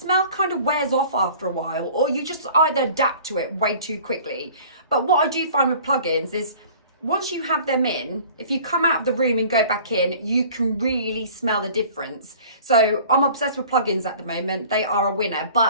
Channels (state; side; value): inverted; both; correlation -0.47